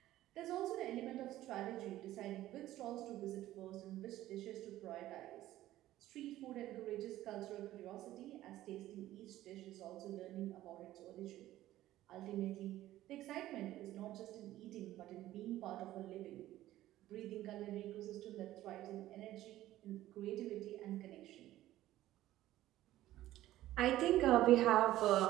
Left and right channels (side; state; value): left; quieter; 14.6 dB